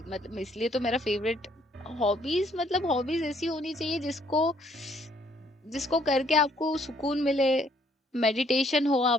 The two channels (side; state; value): both; normal; correlation 0.66